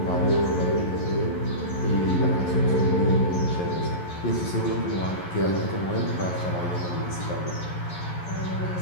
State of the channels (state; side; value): late; right; 11 ms